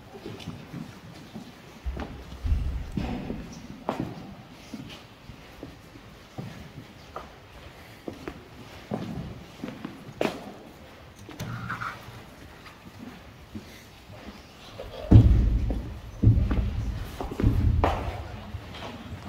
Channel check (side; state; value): both; identical; correlation 1.00